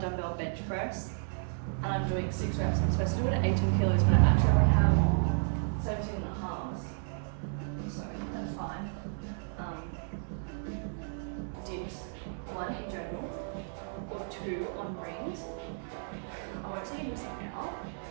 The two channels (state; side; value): silent; left; digital silence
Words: dumbbell bench press, and I'm doing 6 reps. I'm supposed to do it at 18 kilos, but I actually only have 17 and a half, so that's fine. Dips, 1 in general, or 2 on rings. I won't say you're missing out,